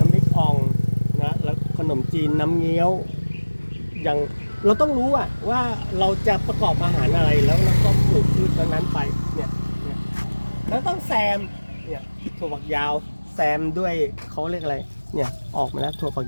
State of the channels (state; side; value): inverted; both; correlation -1.00